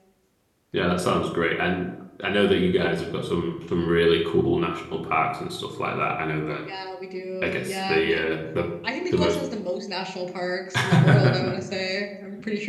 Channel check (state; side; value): identical; both; correlation 1.00